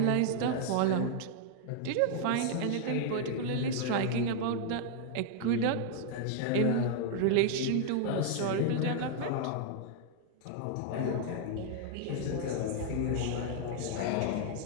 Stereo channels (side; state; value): both; different; correlation 0.00